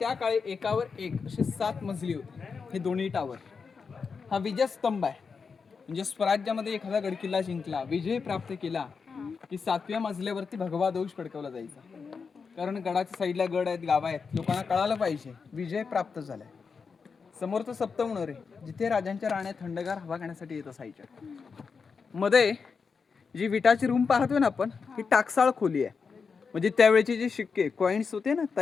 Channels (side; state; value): right; quieter; 5.4 dB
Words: काळी एकावर एक असे 7 मजली होते. हे दोन्ही टावर. हा विजयस्तंभ आहे. म्हणजे स्वराज्यामध्ये एखादा गडकिल्ला जिंकला, विजय प्राप्त केला की 7व्या मजल्यावरती भगवा ध्वज फडकवला जायचा. कारण गडाच्या साईडला गड आहेत, गाव आहेत, लोकांना कळालं पाहिजे विजय प्राप्त झालाय. समोरचं सप्तम मनोरे जिथे राजांच्या राण्या थंडगार हवा घेण्यासाठी येत असायच्या. मध्ये जी विटाची रूम पाहतोय ना आपण, ही टाकसाळ खोली आहे. म्हणजे त्यावेळेचे जे शिक्के कॉइन्स होते ना